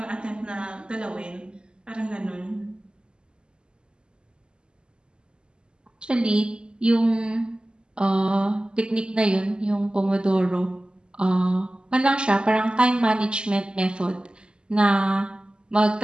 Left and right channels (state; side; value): late; left; 0.050 ms